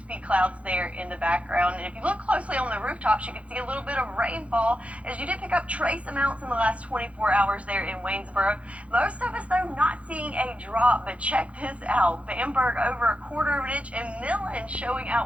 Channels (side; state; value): left; late; 0.064 ms